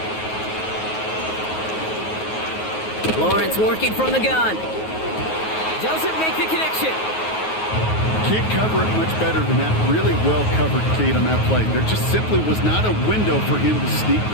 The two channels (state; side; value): late; right; 9.4 ms